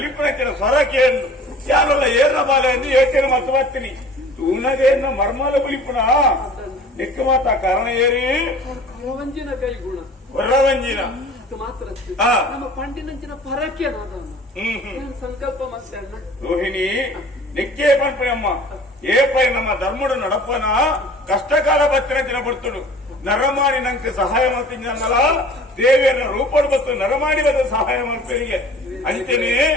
ಸ್ವರ ಕೇಳು ಯಾರಲ್ಲ ಏರ್ನ ಬಾಲೆ ಎಂದು ಯೋಚನೆ ಮತ್ತು ಬರ್ತೀನಿ ತೂನಗೇನ ಮರ್ಮಲ ಬಲಿಪುಣ ಲೆಕ್ಕ ಮಾತ ಕಾರಣ ಏರಿ ಕೊರವಂಜಿನ ಕೈ ಗುಣ ಕೊರವಂಜಿನ ಮಾತ್ರ ನಮ್ಮ ಪಂಡಿನಂಚಿನ ಪರಕ್ಕೆ ಸಂಕಲ್ಪ ಮತ್ತೆ ರೋಹಿಣಿ ನೆಕ್ಕೆ ಪಂಪನಮ್ಮ ಏಪೈ ನಮ್ಮ ಧರ್ಮಡು ನಡಪನ ಕಷ್ಟಕಾಲ ಬತ್ತಿನ ಬರ್ತಡು ನರಮಾಡಿ ನಂಗೆ ಸಹಾಯ ಮಾಡ್ತೀನಲ್ಲ ದೇವಿಯರ ರೂಪಡು ಬತ್ತು ನರಮಾಡಿ ಬದ ಸಹಾಯ ಮಾಡ್ತೀರಿಗೆ ಅಂತೇನೆ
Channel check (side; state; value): both; normal; correlation 0.46